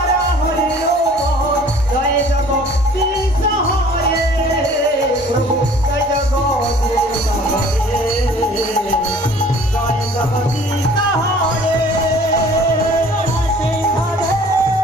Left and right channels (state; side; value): normal; both; correlation 0.51